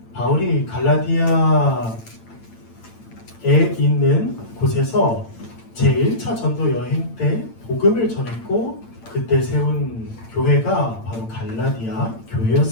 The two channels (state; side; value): late; right; 8.9 ms